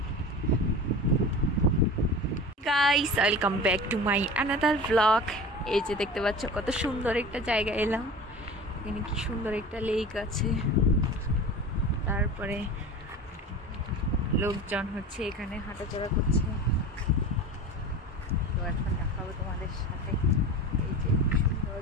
Welcome back to my another blog. এই যে দেখতে পাচ্ছ কত সুন্দর একটা জায়গা এলাম। এখানে কি সুন্দর একটা লেক আছে, তারপরে লোকজন হচ্ছে এখানে হাঁটাচলা করছে। তো এখন দেখাবো তোমাদের সাথে এই যে সুন্দর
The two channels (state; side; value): normal; both; correlation 0.34